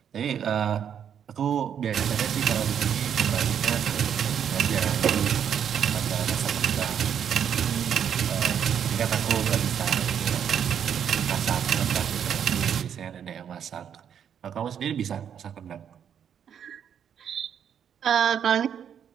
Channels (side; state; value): left; quieter; 8.5 dB